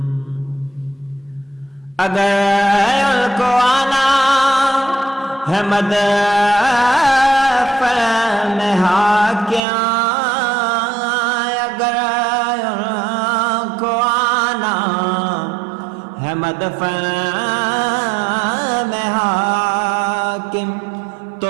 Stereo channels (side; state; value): left; drops out; at 9.6 s